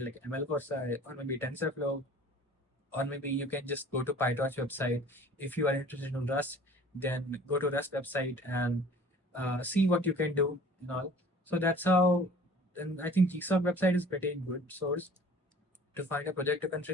like ML Corsa or maybe TensorFlow, or maybe you can just go to PyTorch website. If you are interested in Rust, then go to Rust website and see what you can do and all. So that's how. And I think GSoC website is pretty good source to find a project to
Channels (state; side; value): normal; both; correlation 0.48